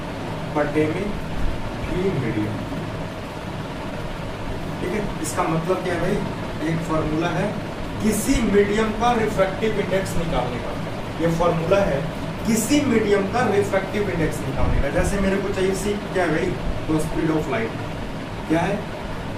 बटे में भी मीडियम, ठीक है। इसका मतलब क्या है भाई, एक फॉर्मूला है किसी मीडियम का रिफ्रैक्टिव इंडेक्स निकालने का, ये फॉर्मूला है किसी मीडियम का रिफ्रैक्टिव इंडेक्स निकालने का। जैसे मेरे को चाहिए सी क्या है भाई, तो स्पीड ऑफ लाइट क्या है,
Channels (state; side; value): identical; both; correlation 1.00